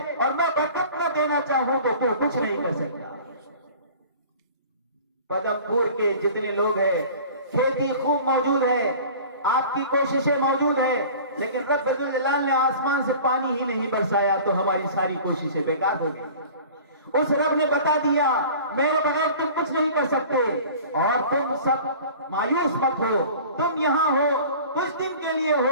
اور میں برکت نہ دینا چاہوں تو کچھ نہیں کر سکتا۔ پدم پور کے جتنے لوگ ہیں، کھیتی خوب موجود ہے، آپ کی کوششیں موجود ہیں، لیکن رب ذوالجلال نے آسمان سے پانی ہی نہیں برسایا تو ہماری ساری کوششیں بیکار ہو گئی۔ اس رب نے بتا دیا میرے بغیر تم کچھ نہیں کر سکتے، اور تم سب مایوس مت ہو، تم یہاں ہو کچھ دن کے لیے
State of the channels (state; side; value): inverted; both; correlation -0.43